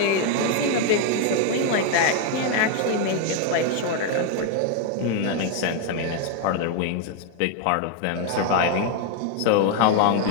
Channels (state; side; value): different; both; correlation 0.01